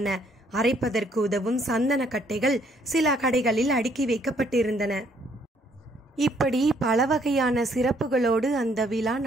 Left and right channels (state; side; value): normal; both; correlation 0.66